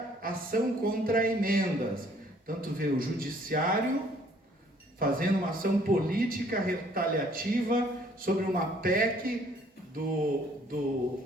ação contra emendas. Tanto vê o judiciário fazendo uma ação política retaliativa sobre uma PEC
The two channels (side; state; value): both; normal; correlation 0.60